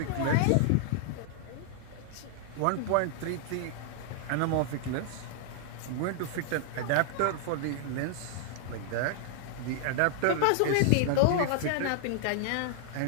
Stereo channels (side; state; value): both; different; correlation -0.01